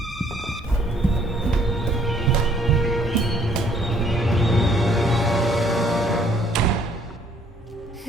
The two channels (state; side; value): normal; both; correlation 0.62